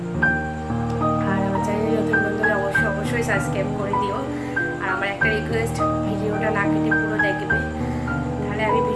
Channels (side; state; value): both; identical; correlation 1.00